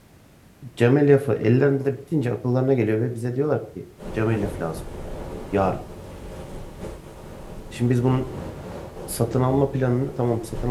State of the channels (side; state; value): both; identical; correlation 1.00